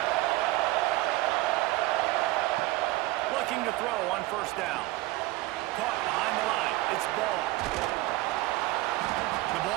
Looking to throw on first down. Caught behind the line. It's Ball. The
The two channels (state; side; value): quieter; left; 19.0 dB